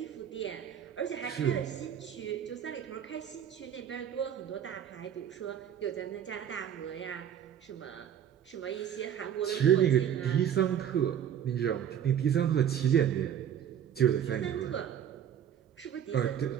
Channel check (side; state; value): left; quieter; 9.4 dB